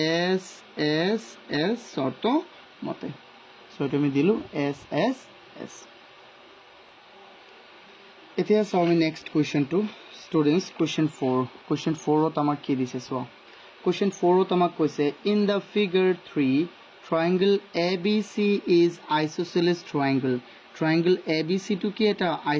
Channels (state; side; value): identical; both; correlation 1.00